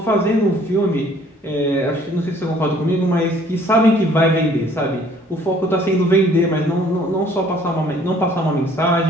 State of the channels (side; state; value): both; normal; correlation 0.58